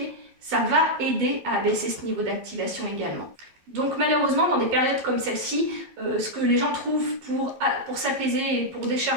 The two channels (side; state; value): left; late; 12 ms